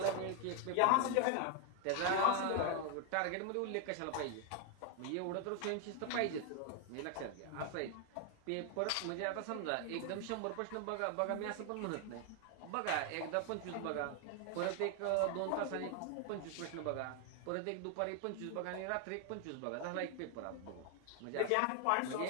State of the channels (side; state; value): both; different; correlation 0.00